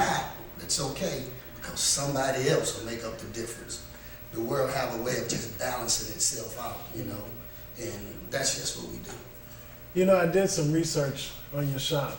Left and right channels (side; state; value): both; identical; correlation 1.00